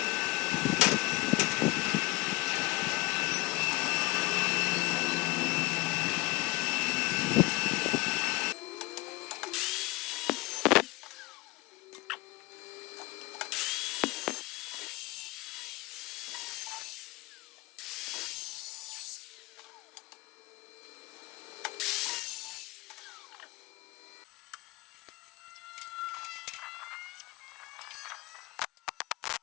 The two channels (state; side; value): quieter; right; 22.2 dB